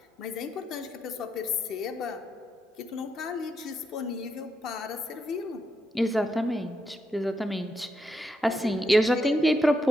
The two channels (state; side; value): normal; both; correlation 0.81